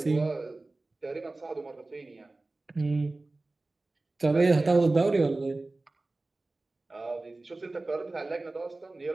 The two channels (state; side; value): quieter; left; 3.1 dB